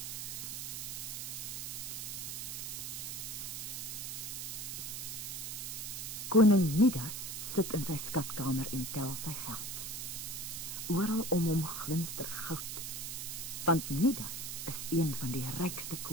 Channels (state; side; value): noise; right; hiss, 5 dB below the sound